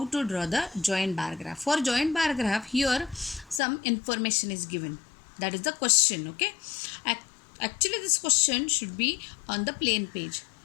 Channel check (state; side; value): drops out; right; at 3.6 s